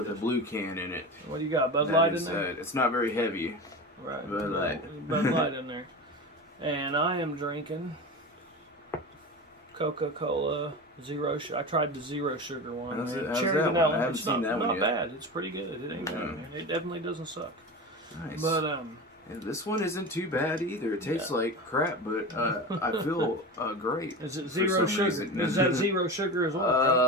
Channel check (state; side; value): normal; both; correlation 0.28